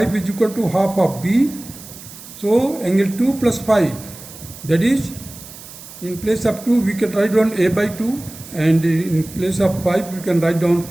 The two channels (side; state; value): right; noise; hiss, 16 dB below the sound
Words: is equal to half of B. So angle 2 plus 5, that is, in place of 2 we can write down A by 2, and in place of 5 we can write down